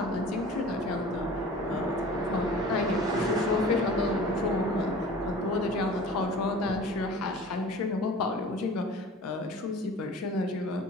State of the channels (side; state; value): both; normal; correlation 0.42